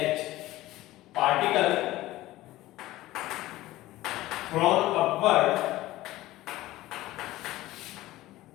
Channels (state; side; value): quieter; right; 16.8 dB